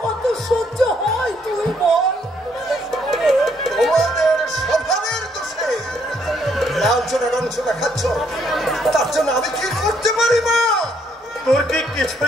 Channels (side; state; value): both; normal; correlation 0.70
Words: কত সহ্য হয় তুই বল? তোমাদের স্বভাবের দোষে লাঞ্ছনা রঞ্ছনা খাচ্ছ, তার জন্য আমি কি করতে পারি মা? তোর কি